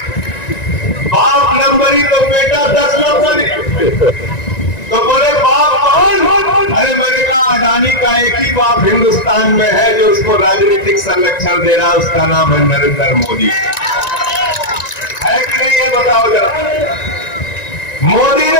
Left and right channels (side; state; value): right; late; 1.9 ms